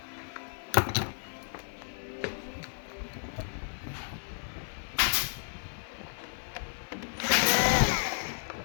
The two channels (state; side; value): silent; right; digital silence